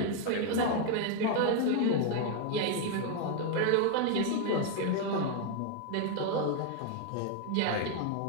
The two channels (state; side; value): different; both; correlation 0.00